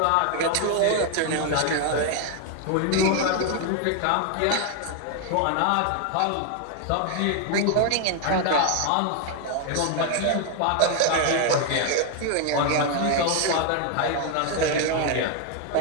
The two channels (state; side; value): different; both; correlation 0.00